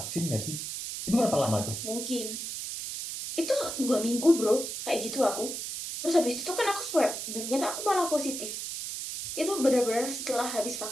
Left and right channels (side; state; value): right; noise; hiss, 5 dB below the sound